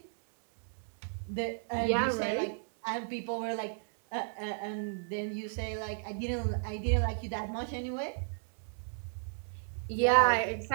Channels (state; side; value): silent; left; digital silence